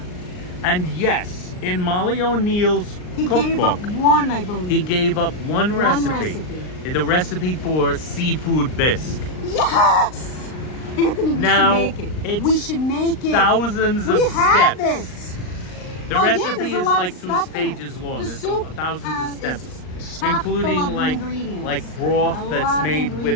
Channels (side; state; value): right; late; 39 ms